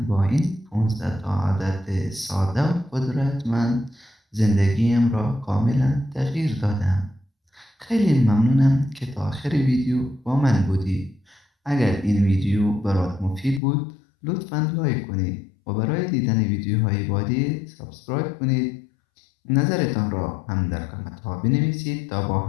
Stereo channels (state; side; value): drops out; right; at 13.6 s